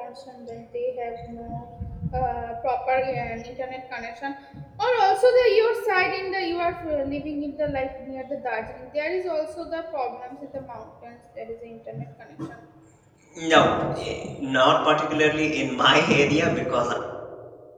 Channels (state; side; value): identical; both; correlation 1.00